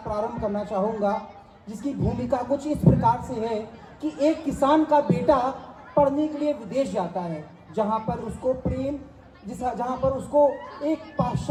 प्रारंभ करना चाहूँगा, जिसकी भूमिका कुछ इस प्रकार से है कि एक किसान का बेटा पढ़ने के लिए विदेश जाता है, जहाँ पर उसको एक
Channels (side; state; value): both; identical; correlation 1.00